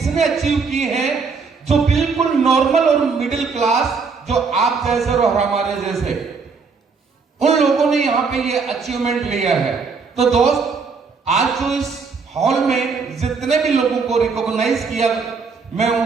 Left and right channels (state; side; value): quieter; left; 5.0 dB